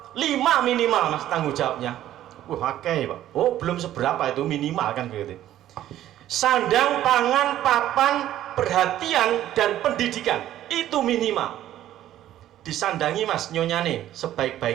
5 minimal, Mas, tanggung jawabnya. Wah, oke, Pak. Oh, belum seberapa itu minimal kan begitu. Sandang, pangan, papan, perhatian dan pendidikan itu minimal. Disandangi Mas nyonyane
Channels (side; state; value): left; quieter; 12.7 dB